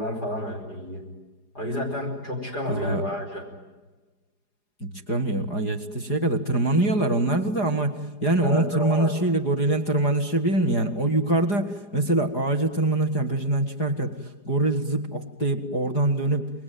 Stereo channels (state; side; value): late; right; 4.9 ms